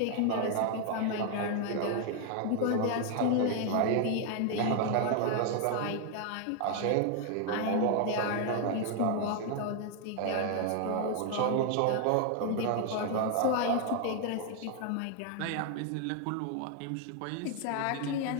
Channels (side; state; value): both; different; correlation 0.00